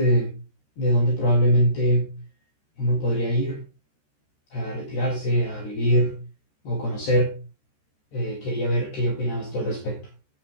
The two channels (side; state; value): right; late; 13 ms